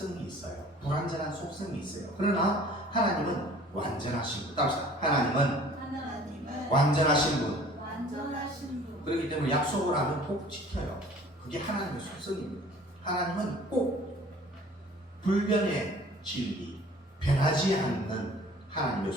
있어요. 불완전한 속성이 있어요. 그러나 하나님은 완전하신 분. 따라서 하나님은 완전하신 분. 그렇기 때문에 약속을 하면 꼭 지켜요. 그게 하나님의 속성입니다. 하나님은 꼭 불변의 진리, 변하지 않는 하나님의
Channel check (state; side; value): normal; both; correlation 0.50